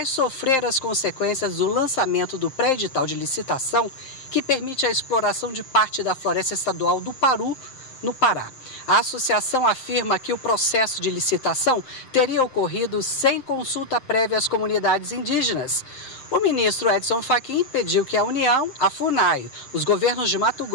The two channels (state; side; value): late; right; 7.6 ms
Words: sofrer as consequências do lançamento do pré-edital de licitação que permite a exploração de parte da floresta estadual do Paru, no Pará. A associação afirma que o processo de licitação teria ocorrido sem consulta prévia às comunidades indígenas. O ministro Edson Fachin pediu que a União, a FUNAI, os governos de Mato